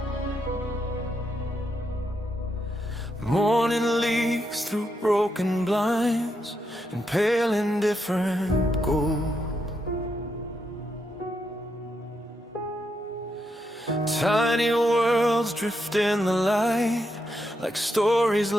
Morning leaks through broken blinds and pale indifferent gold. Tiny worlds drift in the light like stories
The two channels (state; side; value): normal; both; correlation 0.81